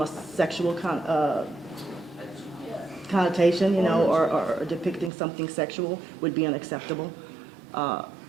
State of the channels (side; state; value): left; drops out; at 5.1 s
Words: a sexual connotation, or depicting something sexual would be unacceptable.